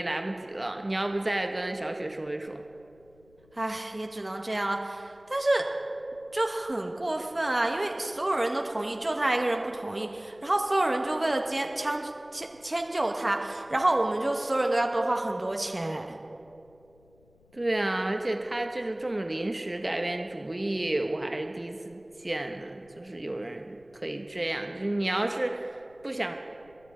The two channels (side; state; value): left; noise; rumble, 30 dB below the sound